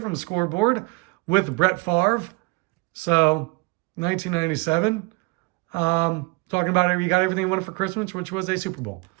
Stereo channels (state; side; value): quieter; left; 27.2 dB